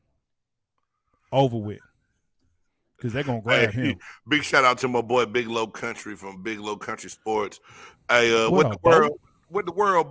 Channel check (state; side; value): identical; both; correlation 1.00